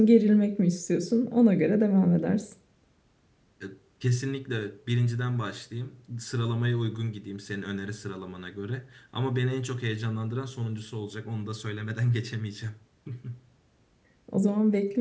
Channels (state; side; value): identical; both; correlation 1.00